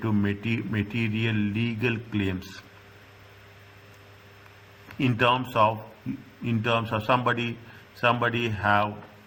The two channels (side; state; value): both; identical; correlation 1.00